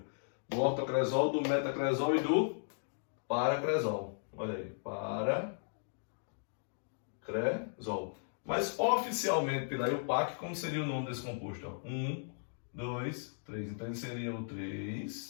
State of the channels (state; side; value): silent; right; digital silence